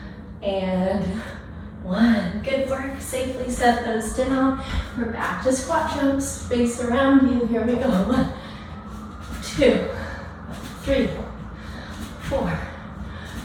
and 1. Good work. Safe safely set those down. We're back to squat jumps, space around you. Here we go. 1, 2, 3, 4,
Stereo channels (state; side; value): identical; both; correlation 1.00